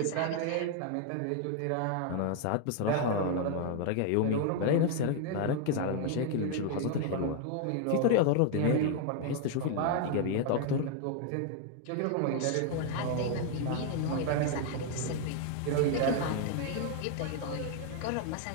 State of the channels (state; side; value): different; both; correlation 0.00